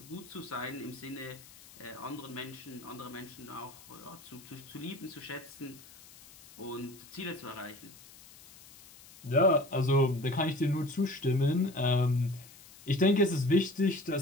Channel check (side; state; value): left; noise; hiss, 21 dB below the sound